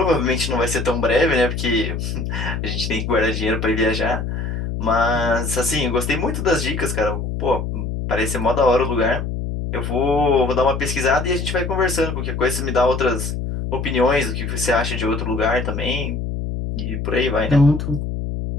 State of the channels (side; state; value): left; noise; hum, 3 dB below the sound